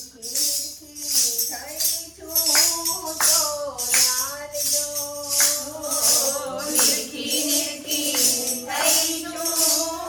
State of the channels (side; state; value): both; identical; correlation 1.00